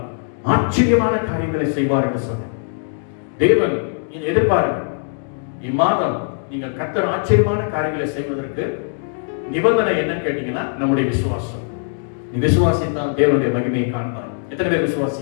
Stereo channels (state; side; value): silent; right; digital silence